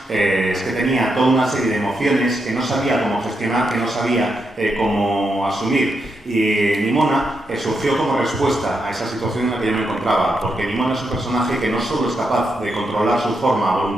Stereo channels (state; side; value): normal; both; correlation 0.82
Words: es que tenía toda una serie de emociones que no sabía cómo gestionar, que no sabía cómo asumir. Y Nimona surgió como respuesta a esa situación en la que yo me encontraba, porque Nimona es un personaje que no solo es capaz de controlar su forma a